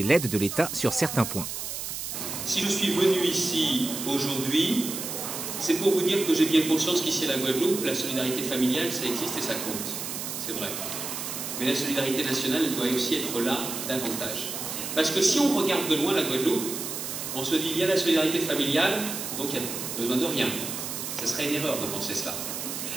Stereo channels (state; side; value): noise; right; hiss, 5 dB below the sound